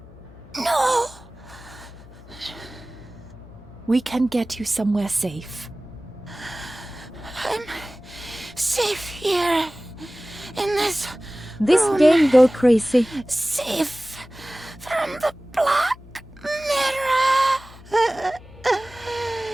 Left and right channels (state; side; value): noise; left; hum, 20 dB below the sound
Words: No! We can get you somewhere safe. I'm safe here. In this room. game go crazy. Safe from the Black Mirror.